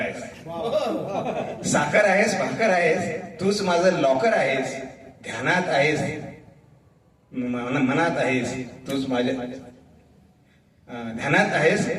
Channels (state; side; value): identical; both; correlation 1.00